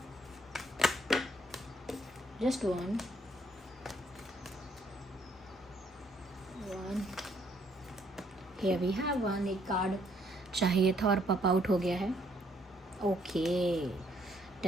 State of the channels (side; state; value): both; normal; correlation 0.68